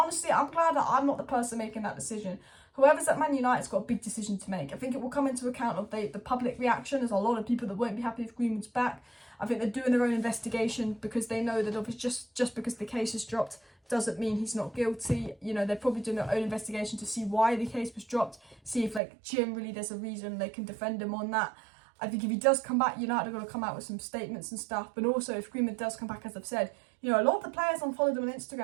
I'm glad that I'm not the person making that decision. Whoever's at Man United's got a big decision to make. I think it will come into account of the public reaction. There's a lot of people that won't be happy if Greenwood's back. I think they're doing their own investigation because they know that obviously just because the case is dropped doesn't mean he's not guilty. They're probably doing their own investigation to see why the case was dropped, see if generally there's a reason they can defend him on that. I think if he does come back, United are going to come out with some statements and stuff. But also, if Greenwood does come back, as I've said, a lot of the players unfollowed him on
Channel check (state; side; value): drops out; left; at 19.0 s